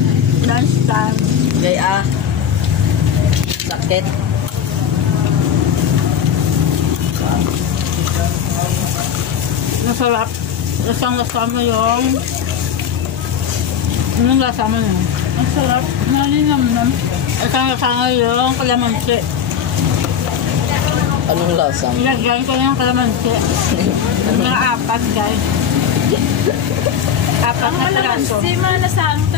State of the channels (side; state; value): right; quieter; 8.2 dB